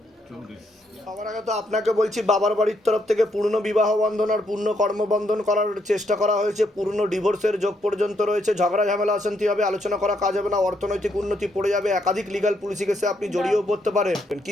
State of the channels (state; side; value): normal; both; correlation 0.75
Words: সবার আগে তো আপনাকে বলছি, বাবার বাড়ির তরফ থেকে পূর্ণ বিবাহ বন্ধন আর পূর্ণ কর্মবন্ধন করার চেষ্টা করা হয়েছে, পূর্ণ ডিভোর্সের যোগ পর্যন্ত রয়েছে। ঝগড়া ঝামেলা অশান্তি হবে, আলোচনা করা কাজ হবে না, অর্থনৈতিক উন্নতি পড়ে যাবে, একাধিক লিগাল পুলিশি কেসে আপনি জড়িয়েও পড়তে পারেন।